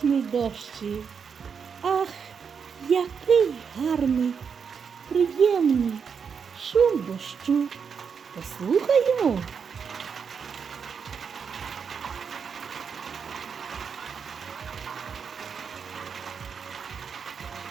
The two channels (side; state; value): left; quieter; 6.4 dB